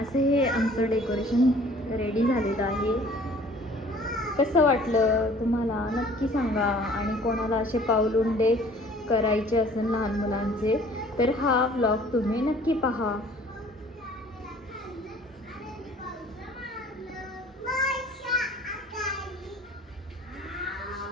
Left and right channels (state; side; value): normal; both; correlation 0.52